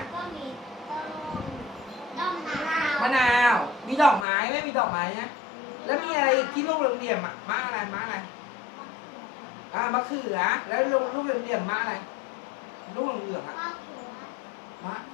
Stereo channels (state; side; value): drops out; right; at 4.2 s